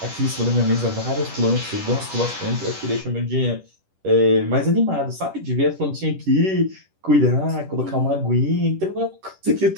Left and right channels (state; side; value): late; left; 10 ms